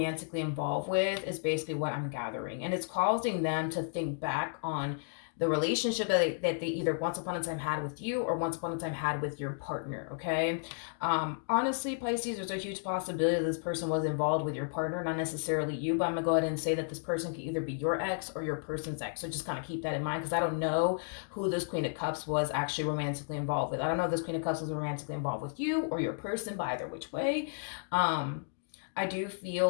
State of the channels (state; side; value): silent; right; digital silence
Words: involved with is basically what I'm gathering. And it's causing them to think back on the relationship that they either once upon a time had with you or once upon a time had with your partner, okay? Honestly, Pisces, there's a huge possibility that this person was involved with your partner, not necessarily you, but I'm going to go ahead and say that this person could either be your ex or your person's ex. So just kind of keep that in mind, because I don't know who this Queen of Cups was actually romantically involved with. I don't know if this Queen of Cups was romantically involved with you or your person, but either which way. I do feel